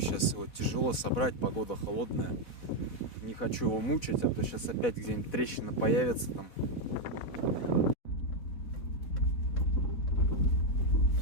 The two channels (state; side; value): late; right; 4.0 ms